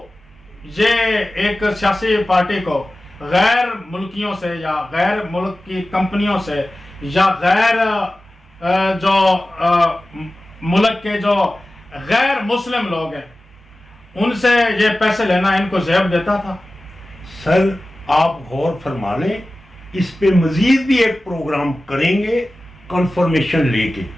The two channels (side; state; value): both; normal; correlation 0.96